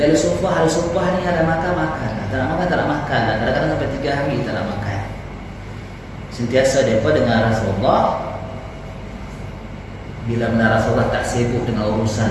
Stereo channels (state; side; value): identical; both; correlation 1.00